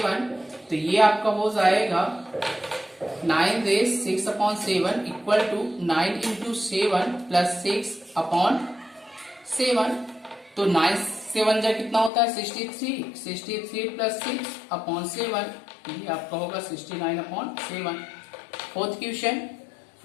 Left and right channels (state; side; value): drops out; right; at 12.1 s